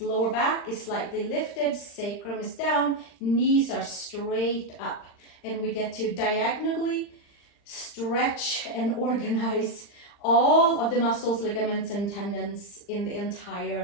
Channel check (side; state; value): right; late; 40 ms